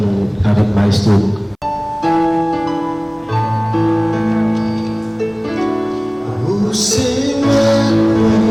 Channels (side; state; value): both; identical; correlation 1.00